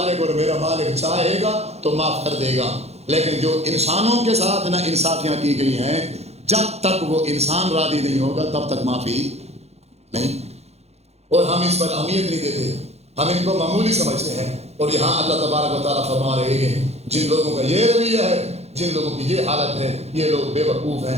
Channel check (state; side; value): late; left; 0.31 ms